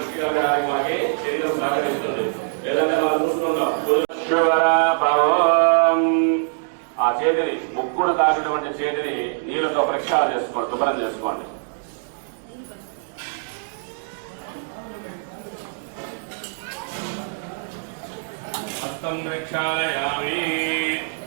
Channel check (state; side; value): silent; left; digital silence